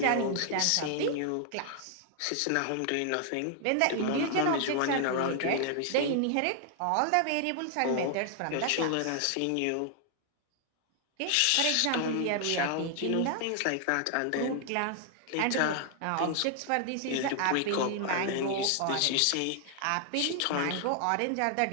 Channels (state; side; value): different; both; correlation 0.00